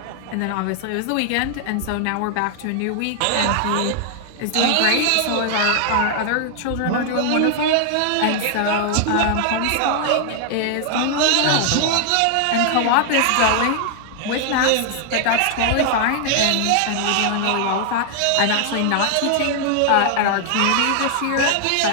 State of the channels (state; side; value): different; both; correlation 0.00